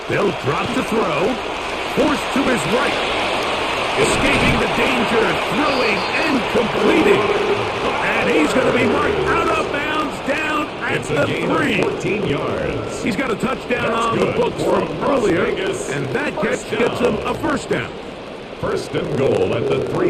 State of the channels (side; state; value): both; identical; correlation 1.00